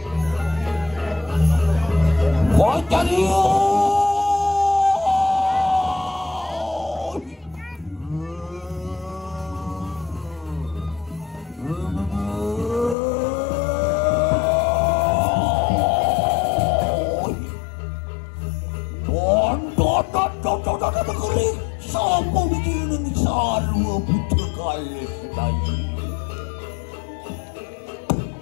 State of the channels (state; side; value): drops out; right; at 13.0 s